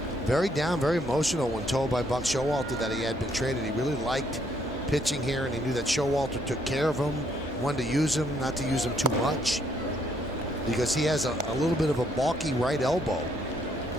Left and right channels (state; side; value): normal; both; correlation 0.70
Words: very down, very emotional when told by Buck Showalter that he had been traded. He really liked pitching here, and he knew that Showalter took care of him, wanted to use him, not to use him too much, because he has a little bit of a balky right elbow.